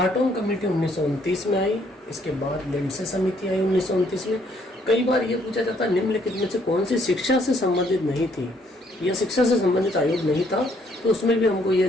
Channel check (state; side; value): normal; both; correlation 0.67